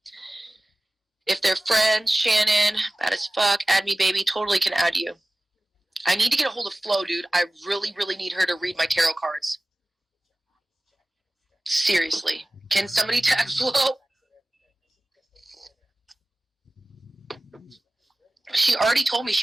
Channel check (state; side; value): normal; both; correlation 0.97